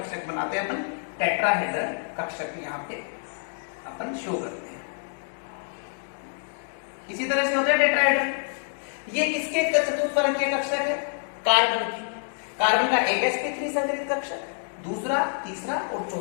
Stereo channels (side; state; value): right; silent; digital silence